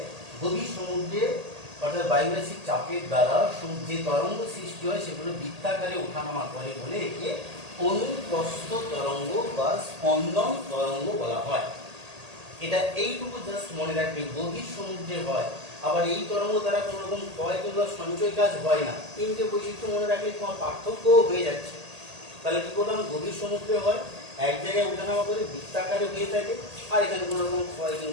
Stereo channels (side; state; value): left; late; 1.8 ms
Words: গভীর সমুদ্রে অর্থাৎ বায়ুরাশির চাপের দ্বারা যে তরঙ্গ সৃষ্টি হয় সেগুলো বৃত্তাকারে ওঠানামা করে বলে একে অনুপ্রস্থ তরঙ্গ বা স্পন্দন তরঙ্গ বলা হয়। এটা এইটুকু জাস্ট মনে রাখবে, গভীর সমুদ্রে হয়, আবার এই তরঙ্গ দ্বারা কোনো রকম ক্ষয় কিংবা সঞ্চয় কাজ হয় না। তিনটে বৈশিষ্ট্য মনে রাখলে তোমার পার্থক্য হয়ে যাচ্ছে। তাহলে কি করলাম, গভীর সমুদ্রে হয়, এক জায়গায় ওঠানামা করে বৃত্তাকারে হয়ে থাকে, আর এখানে কোনো রকম ক্ষয়